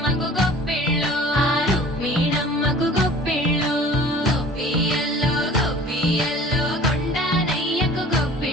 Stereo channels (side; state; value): both; normal; correlation 0.46